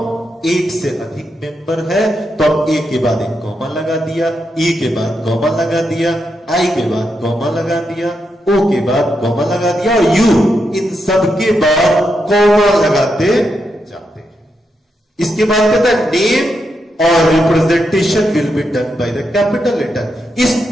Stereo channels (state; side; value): normal; both; correlation 0.84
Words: एक से अधिक मेंबर है तो हम ए के बाद एक कॉमा लगा दिया, ई के बाद कॉमा लगा दिया, आई के बाद कॉमा लगा दिया, ओ के बाद कॉमा लगा दिया, और यू, इन सब के बाद कॉमा लगाते जाते हैं। इसके बाद कहता है नेम और representation will be done by the capital letter. इस